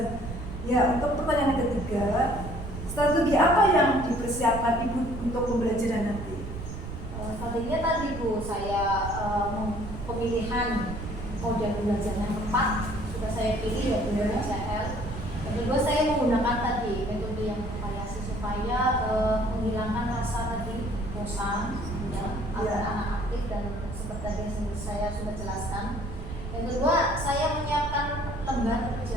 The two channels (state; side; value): noise; right; rumble, 8 dB below the sound